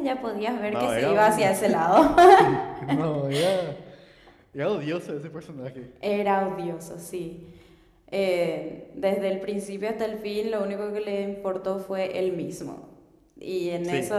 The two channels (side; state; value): both; identical; correlation 1.00